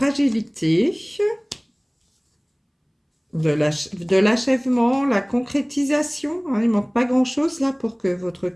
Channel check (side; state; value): both; identical; correlation 1.00